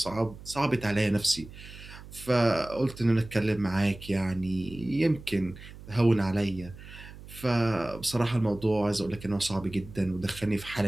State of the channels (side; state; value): right; noise; hum, 16 dB below the sound